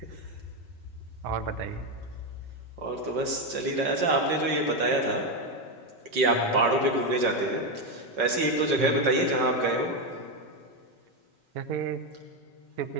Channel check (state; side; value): late; left; 5.4 ms